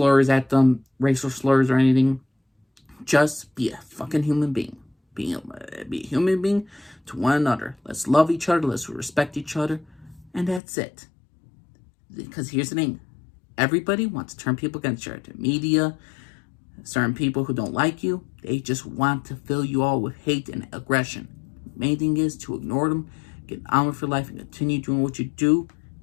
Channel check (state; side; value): drops out; right; at 10.6 s